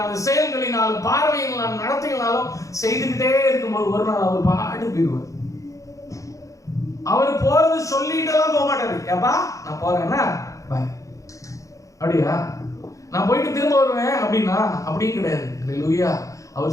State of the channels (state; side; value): late; right; 0.16 ms